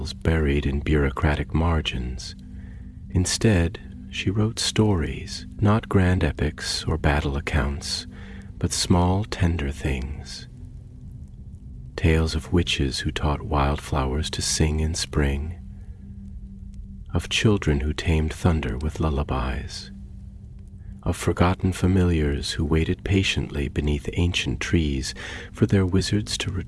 buried in bureaucratic margins. Instead, she wrote stories, not grand epics or battle accounts, but small, tender things. tales of witches who taught wildflowers to sing in spring, of children who tamed thunder with lullabies, of forgotten familiars who waited patiently beneath ancient trees for their wizards to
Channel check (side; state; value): both; identical; correlation 1.00